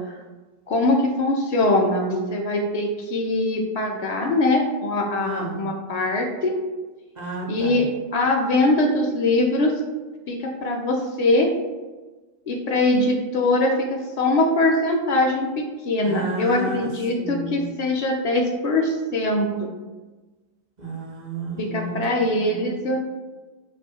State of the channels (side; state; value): left; late; 2.0 ms